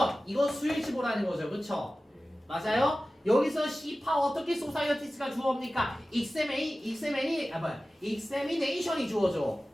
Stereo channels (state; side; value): normal; both; correlation 0.96